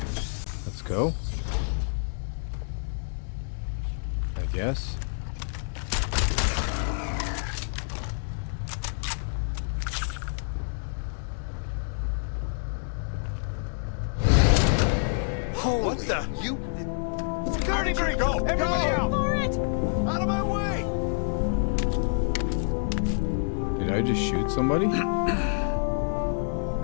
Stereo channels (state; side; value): silent; right; digital silence